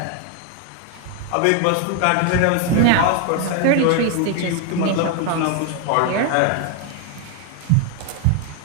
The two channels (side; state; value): both; different; correlation 0.01